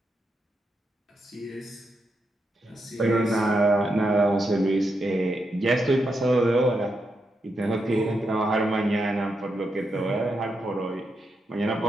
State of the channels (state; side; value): normal; both; correlation 0.84